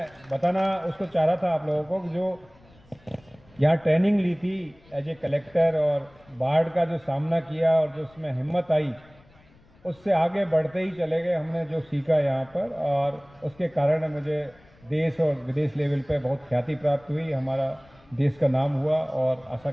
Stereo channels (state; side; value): noise; left; rumble, 28 dB below the sound